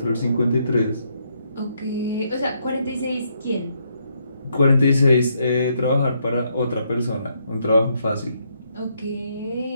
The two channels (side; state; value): both; inverted; correlation -0.75